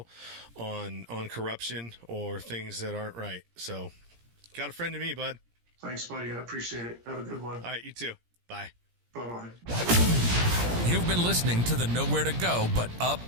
on corruption or things that aren't right. So, got a friend to me, bud. Thanks, buddy. I appreciate it. Have a good one. All right, you too. Bye. Bye-bye. You've been listening to the Nowhere to Go But Up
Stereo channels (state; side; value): late; left; 17 ms